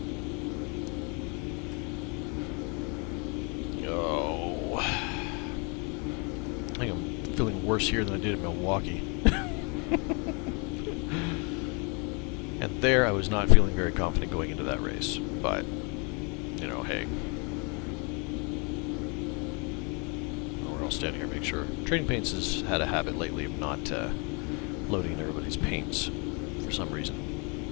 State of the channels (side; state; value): right; quieter; 33.3 dB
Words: Oh. I think I'm feeling worse here than I did in Milwaukee. And there I was not feeling very confident going into that race. But, you know, hey. We're all standing here, make sure. Trading Paints has had a habit lately of not loading everybody's paints for some